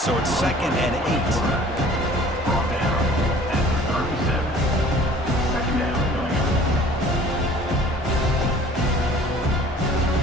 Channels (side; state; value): both; normal; correlation 0.50